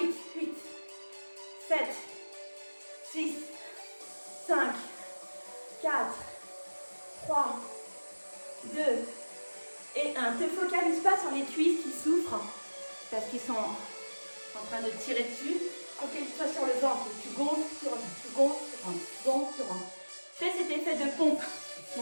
8. 7, 6, 5, 4, 3, 2 et 1. Ne te focalise pas sur les cuisses qui souffrent parce qu'ils sont en train de tirer dessus. Focalise-toi sur le ventre. Tu gonfles, tu rentres, tu gonfles, tu rentres, tu gonfles, tu rentres. Fais cet effet de pompe.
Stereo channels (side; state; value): both; inverted; correlation -1.00